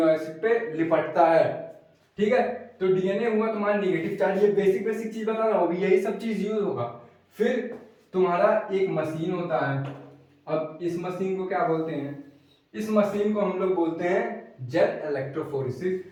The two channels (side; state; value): both; identical; correlation 1.00